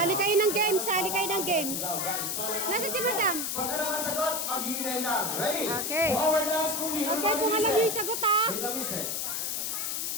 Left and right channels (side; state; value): left; noise; hiss, 1 dB below the sound